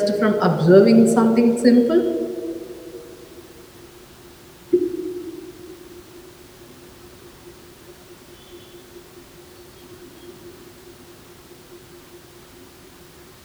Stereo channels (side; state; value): both; identical; correlation 1.00